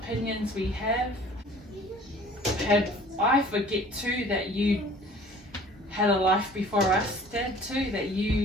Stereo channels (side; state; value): both; normal; correlation 0.49